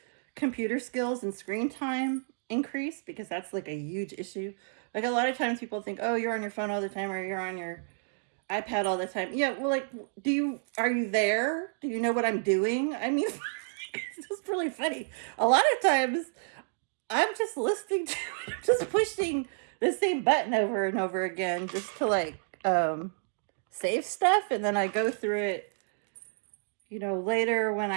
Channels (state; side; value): silent; left; digital silence